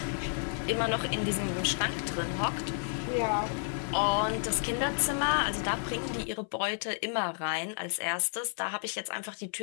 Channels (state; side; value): silent; right; 57 dB below the other